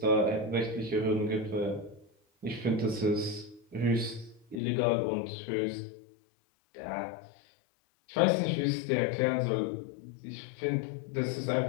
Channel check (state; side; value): drops out; right; at 4.6 s